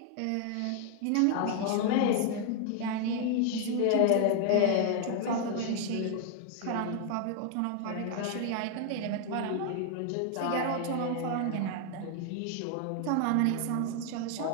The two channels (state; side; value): different; both; correlation 0.00